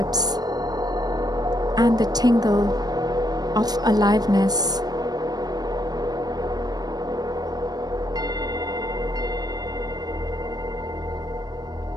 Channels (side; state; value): left; late; 0.19 ms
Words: and the tingle of aliveness.